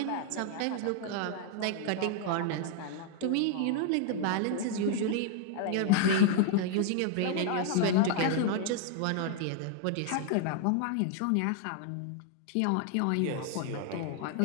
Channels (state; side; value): different; both; correlation 0.00